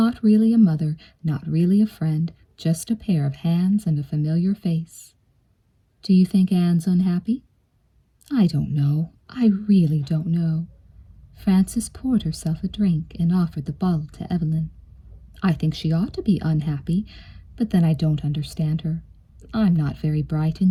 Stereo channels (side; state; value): both; identical; correlation 1.00